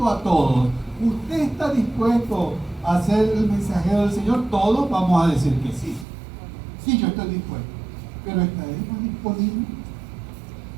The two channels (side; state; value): left; drops out; at 6.1 s